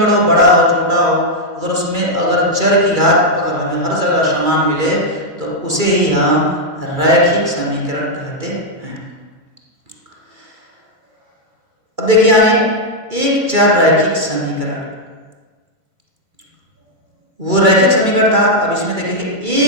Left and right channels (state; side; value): late; left; 2.3 ms